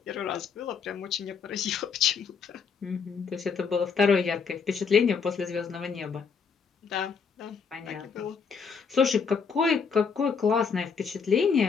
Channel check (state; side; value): quieter; right; 5.8 dB